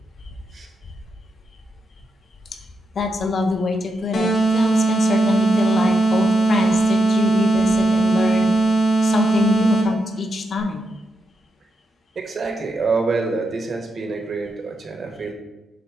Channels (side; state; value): both; normal; correlation 0.85